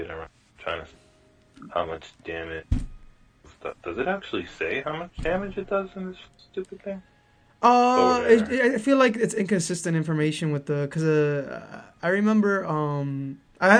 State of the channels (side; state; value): both; identical; correlation 1.00